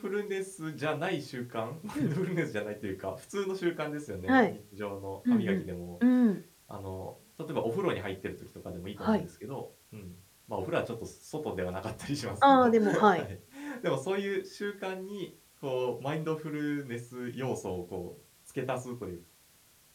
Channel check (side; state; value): both; identical; correlation 1.00